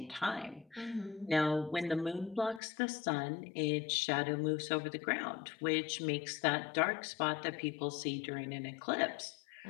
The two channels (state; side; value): drops out; right; at 2.6 s